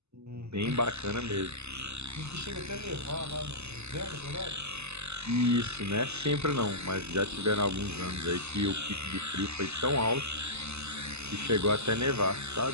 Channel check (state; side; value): late; left; 0.80 ms